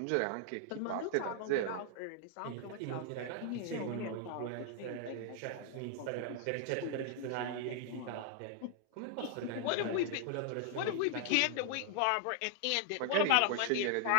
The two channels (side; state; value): both; different; correlation 0.00